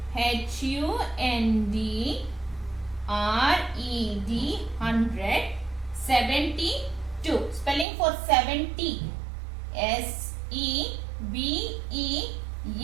H-U-N-D-R-E-D. 100. 72. Spelling for 70?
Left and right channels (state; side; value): drops out; left; at 7.9 s